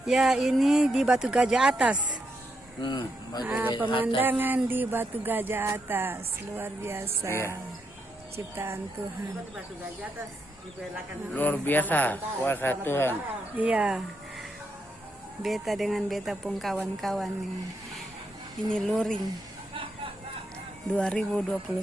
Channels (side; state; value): both; normal; correlation 0.80